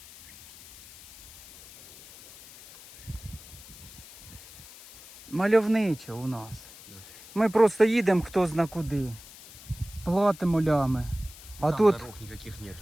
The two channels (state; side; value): noise; left; hiss, 19 dB below the sound